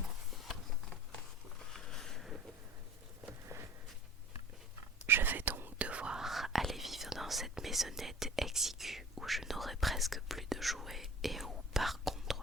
Je vais donc devoir aller vivre dans cette maisonnette exiguë où je n'aurai presque plus de jouets et où, par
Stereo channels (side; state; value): both; normal; correlation 0.43